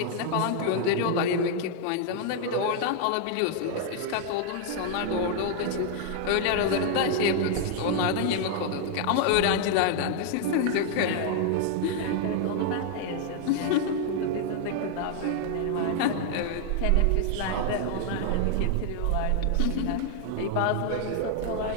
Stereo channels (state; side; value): different; both; correlation 0.00